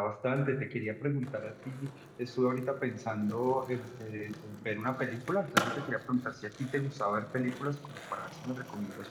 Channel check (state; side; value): identical; both; correlation 1.00